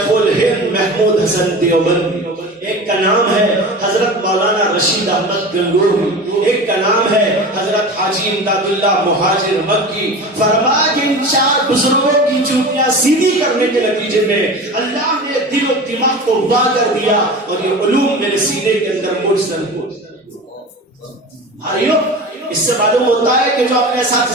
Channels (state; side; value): normal; both; correlation 0.32